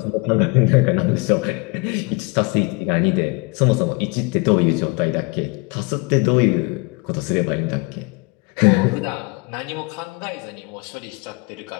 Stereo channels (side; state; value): right; quieter; 28.2 dB